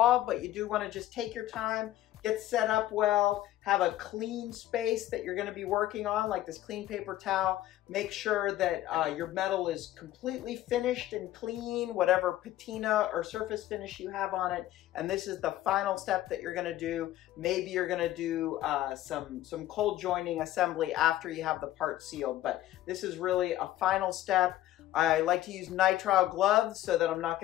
but you do wanna just take your time, get set up well, have a clean space that you're gonna be working on, like this clean paper towel. Make sure that your metal is completely finished and clean, whatever patina or surface finish you have on it. And this is the final step that you're gonna do. Maybe you're gonna do some cold joining assembly after you have the part sealed, but this is really a final step. I like to use nitrile gloves so that I'm not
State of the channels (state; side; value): quieter; right; 14.3 dB